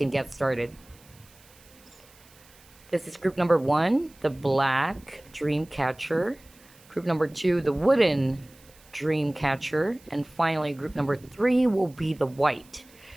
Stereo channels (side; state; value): right; noise; hiss, 26 dB below the sound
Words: get started. This is group number 1, the black dream catcher. Group number 2, the wooden dream catcher. And finally, group number 3 will be the white